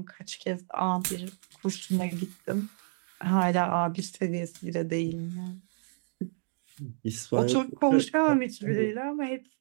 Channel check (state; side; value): silent; left; digital silence